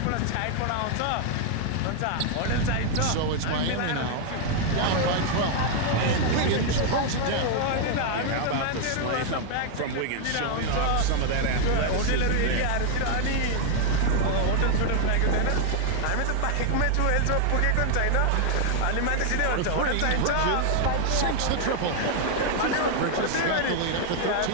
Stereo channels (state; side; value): different; both; correlation 0.00